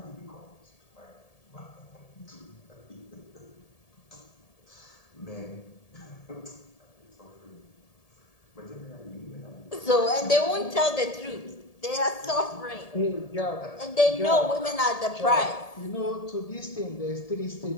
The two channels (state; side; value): late; right; 1.7 ms